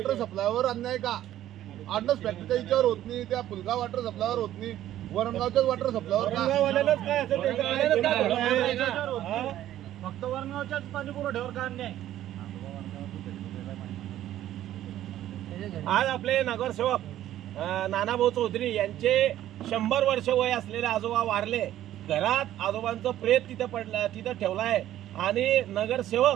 सप्लायवर अन्याय का? आडनस फॅक्टरीच्या याच्यावर होत नाही, त्या फुलगाव वॉटर सप्लायवर होत नाही, वरणगावच्याच वॉटर सप्लायवर काय असेल फक्त वरणगावच्याच पाणी पुरवठ्यावर का अन्याय? आज आपले नगरसेवक नानाभाऊ चौधरी यांचे 100 वर्ष वय असलेले आजोबा वारले. घरात आजोबांचं प्रेत तिथे पडलं, तिथं ठेवलाय. आणि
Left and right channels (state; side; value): quieter; left; 12.8 dB